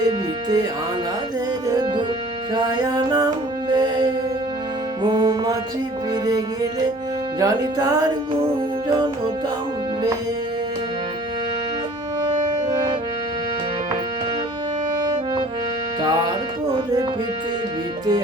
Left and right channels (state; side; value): normal; both; correlation 0.50